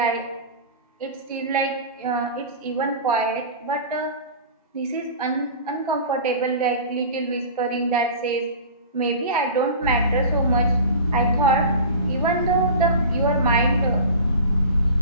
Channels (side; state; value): both; inverted; correlation -0.36